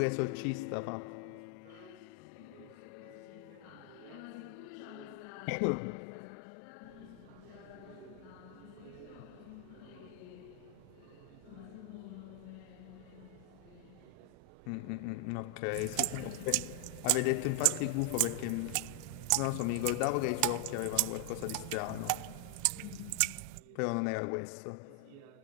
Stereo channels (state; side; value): different; both; correlation 0.00